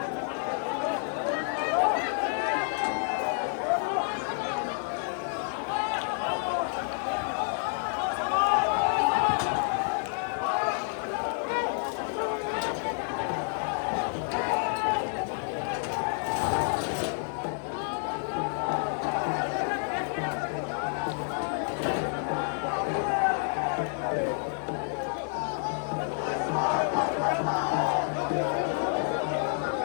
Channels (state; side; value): silent; right; 58 dB below the other